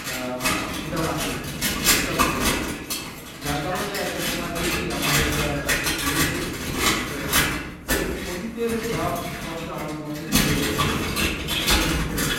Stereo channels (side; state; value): both; identical; correlation 1.00